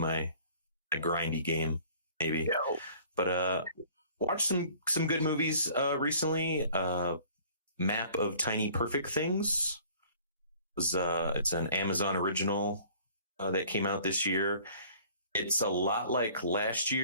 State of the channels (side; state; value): both; inverted; correlation -0.52